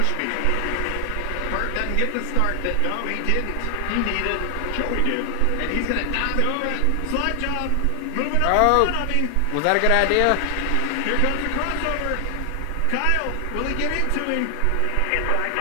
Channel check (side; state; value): both; different; correlation 0.00